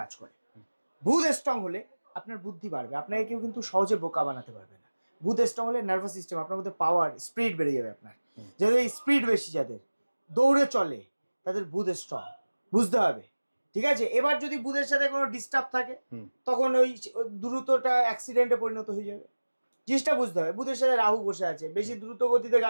করে। বুধ স্ট্রং হলে আপনার বুদ্ধি বাড়বে, আপনাকে কেউ কিন্তু সহজে বোকা বানাতে পারবে না। বুধ স্ট্রং হলে নার্ভাস সিস্টেম, আপনার মধ্যে পাওয়ার স্পিড বেড়ে যাবে। আপনার যাদের স্পিড বেশি, যাদের দৌড়ে চলে, তাদের বুধ স্ট্রং, বুঝতে হবে, ঠিক আছে? এবার যদি বুধের সাথে কোনো ডিস্টার্ব থাকে, তখন ওই দ্রুতটা অ্যাক্সিডেন্টে পরিণত হয়ে যাবে, জিনিসটা বুঝতে হবে। বুধের সাথে রাহু বসে আছে, বেশি দ্রুত গতিতে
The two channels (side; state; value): both; inverted; correlation -1.00